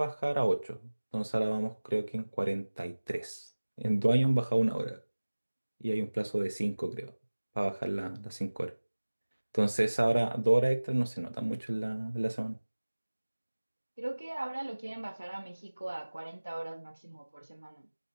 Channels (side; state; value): both; inverted; correlation -1.00